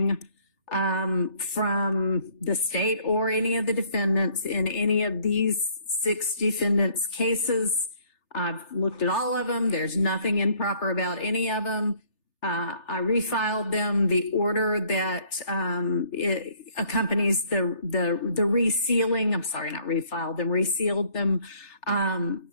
from the state or any of the defendants in any of these 6 defendants' cases. I've looked at all of them. There's nothing improper about any of them. I refiled them. The order that it accompanies the resealing, I'm sorry, not refiled them, resealed them,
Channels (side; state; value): right; late; 3.4 ms